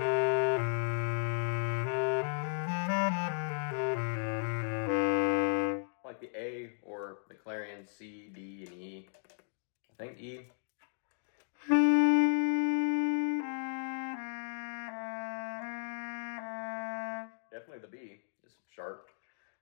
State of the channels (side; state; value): right; silent; digital silence